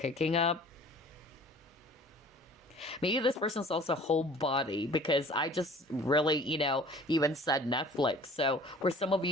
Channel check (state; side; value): normal; both; correlation 0.48